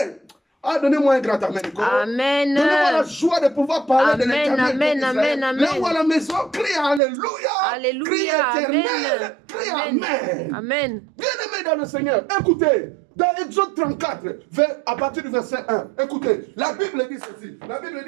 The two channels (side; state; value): left; drops out; at 7.0 s